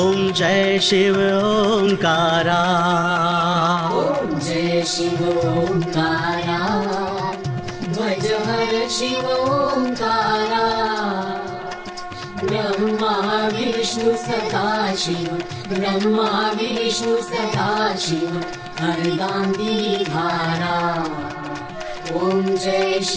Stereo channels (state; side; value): identical; both; correlation 1.00